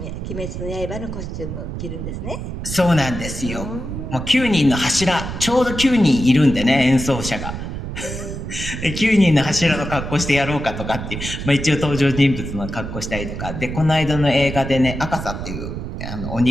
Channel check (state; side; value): noise; right; rumble, 6 dB below the sound